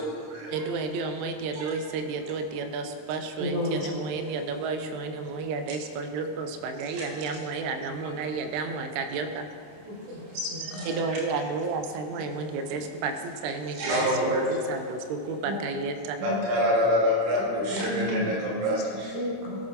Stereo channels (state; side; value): late; left; 26 ms